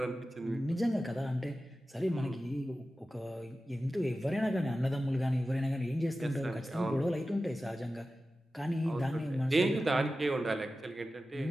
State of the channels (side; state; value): both; normal; correlation 0.94